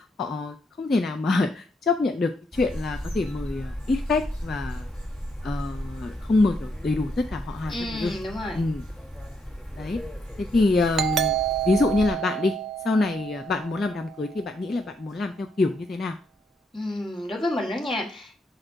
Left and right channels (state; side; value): normal; both; correlation 0.77